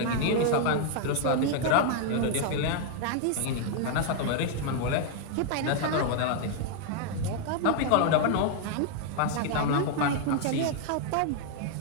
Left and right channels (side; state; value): both; different; correlation 0.00